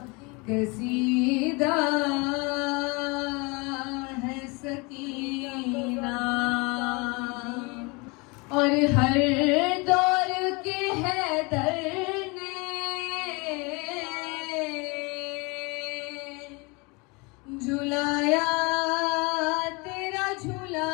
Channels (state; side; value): quieter; right; 28.0 dB